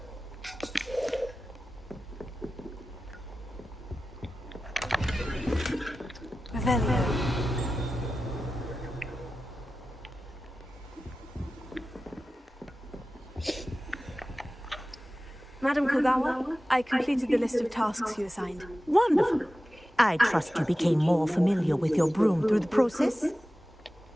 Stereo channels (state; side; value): normal; both; correlation 0.95